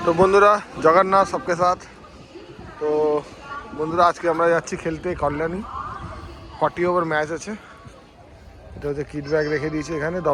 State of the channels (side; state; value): both; identical; correlation 1.00